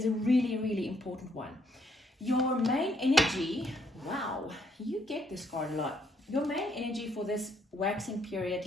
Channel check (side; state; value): both; normal; correlation 0.70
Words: a really, really important one. Your main energy, wow, you get this card a lot. Your main energy for this waxing period,